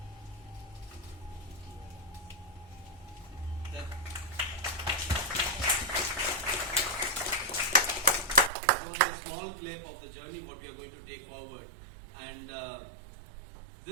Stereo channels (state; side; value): drops out; left; at 8.5 s